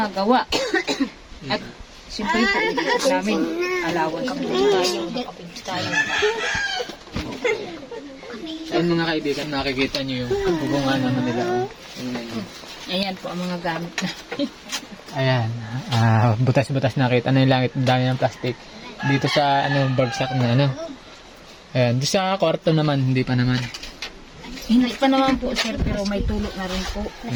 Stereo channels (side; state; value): both; identical; correlation 1.00